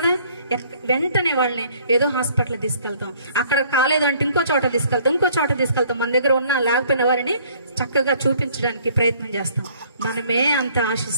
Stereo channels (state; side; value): inverted; both; correlation -0.59